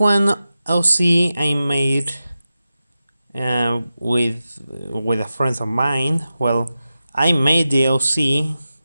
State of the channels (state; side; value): inverted; both; correlation -0.93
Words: OC I made with a friend of mine. Well, I made the OC